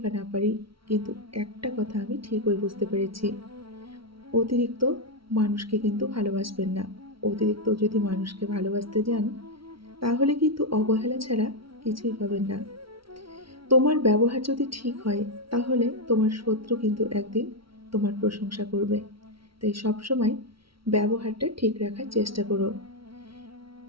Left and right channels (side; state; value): left; late; 0.75 ms